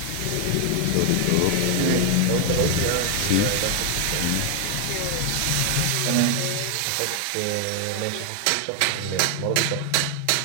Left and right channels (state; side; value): different; both; correlation 0.01